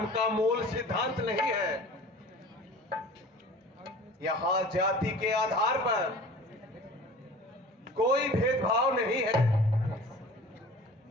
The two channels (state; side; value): normal; both; correlation 0.42